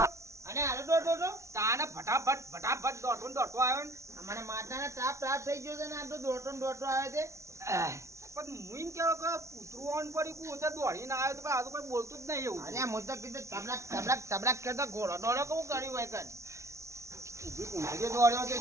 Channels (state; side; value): late; left; 0.14 ms